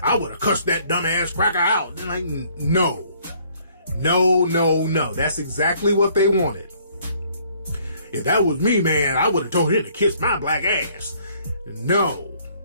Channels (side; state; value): both; inverted; correlation -0.61